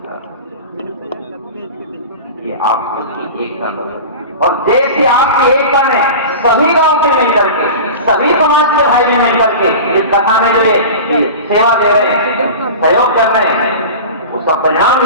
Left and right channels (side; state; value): both; inverted; correlation -0.32